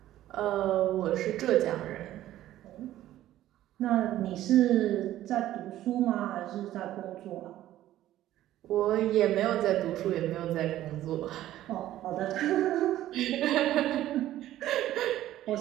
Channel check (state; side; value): quieter; left; 13.6 dB